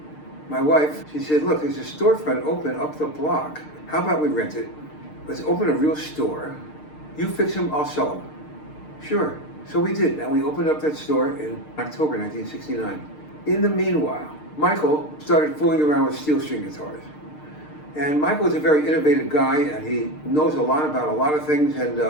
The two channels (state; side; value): late; right; 6.6 ms